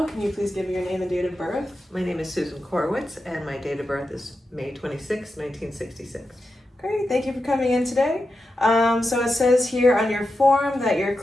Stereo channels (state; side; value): normal; both; correlation 0.89